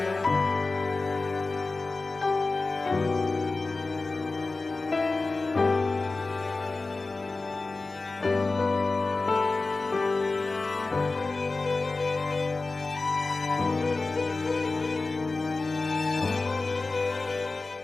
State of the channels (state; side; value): quieter; right; 3.6 dB